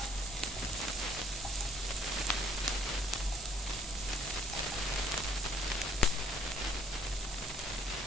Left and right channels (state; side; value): normal; both; correlation 0.58